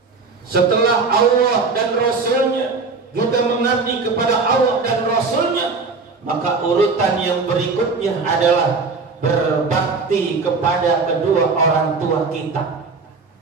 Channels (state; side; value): quieter; left; 4.3 dB